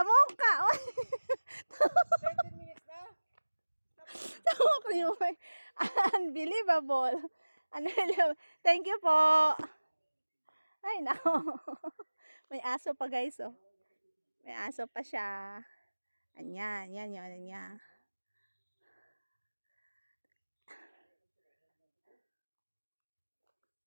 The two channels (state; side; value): inverted; both; correlation -1.00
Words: mukha. Uy. 13 minutes na. Tawa ko yun. Unbelievable. Thank you po. Ay, nako. May aso pa guys, oh. May aso pa siya. Anyan, yan yun, niya.